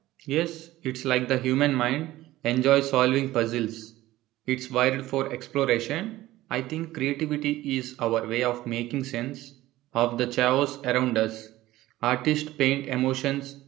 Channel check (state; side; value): quieter; left; 16.3 dB